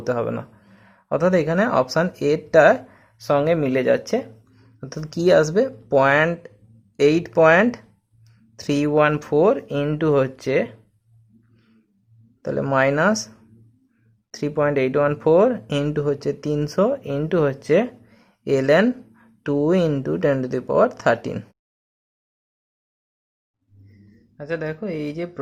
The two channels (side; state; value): both; identical; correlation 1.00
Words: হবে না। অর্থাৎ এখানে অপশান এটার সঙ্গে মিলে যাচ্ছে। অর্থাৎ কী আসবে, 0.8.314 ইন্টু হচ্ছে তাহলে মাইনাস 3.814 ইন্টু হচ্ছে 300 ইন্টু হচ্ছে ln 2 ইন্টু 10⁻13। আচ্ছা দেখো, এই যে